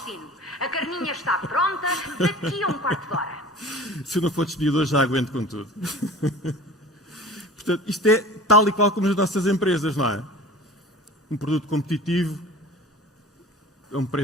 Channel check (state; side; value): normal; both; correlation 0.41